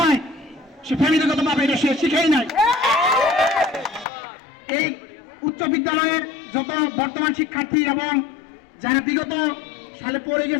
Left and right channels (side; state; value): right; drops out; at 4.0 s